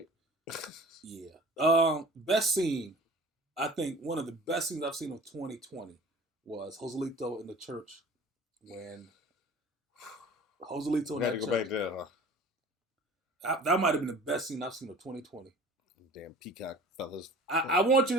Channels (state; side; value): normal; both; correlation 0.44